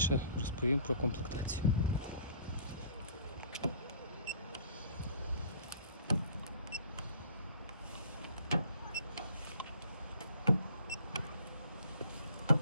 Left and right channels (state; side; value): inverted; both; correlation -0.53